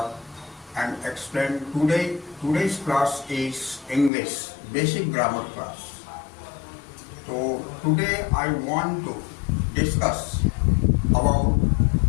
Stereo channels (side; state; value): right; drops out; at 4.1 s